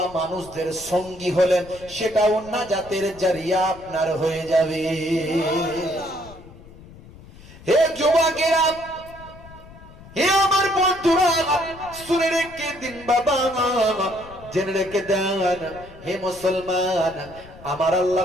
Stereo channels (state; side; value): noise; left; rumble, 20 dB below the sound